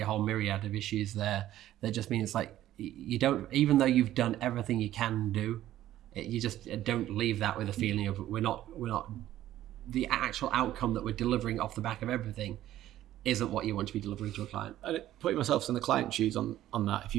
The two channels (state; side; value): quieter; left; 13.3 dB